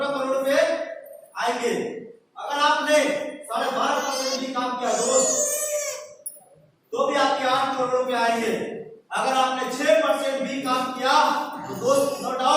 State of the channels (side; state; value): both; identical; correlation 1.00